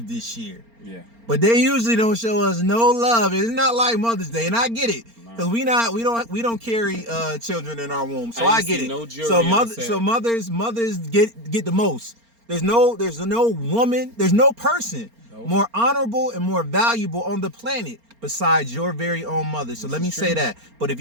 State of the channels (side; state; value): left; late; 4.3 ms